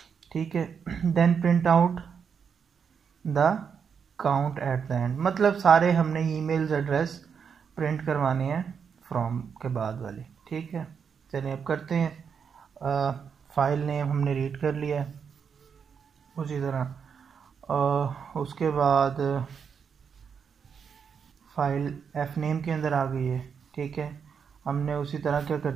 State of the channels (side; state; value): left; quieter; 6.7 dB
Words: ठीक है। Then print out the count at the end, मतलब सारे हमने ईमेल्स एड्रेस प्रिंट करवाने हैं फ्रॉम के बाद वाले, ठीक है। चलिए अब करते हैं। फाइल नेम हमने रीड कर लिया है, उसी तरह उसके बाद फाइल एफ नेम के अंदर आ गई है, ठीक है। हमने उसी तरह क्या